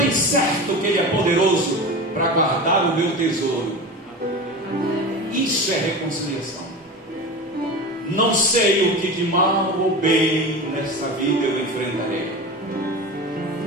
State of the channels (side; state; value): both; normal; correlation 0.29